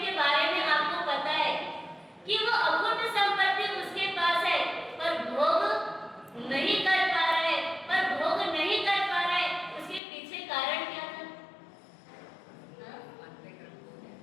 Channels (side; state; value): right; drops out; at 10.0 s